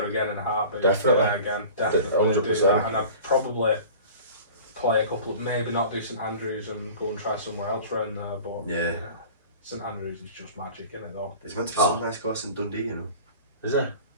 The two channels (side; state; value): both; inverted; correlation -0.41